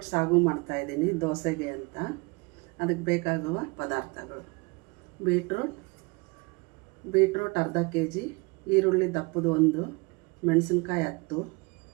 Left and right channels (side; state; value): left; quieter; 28.1 dB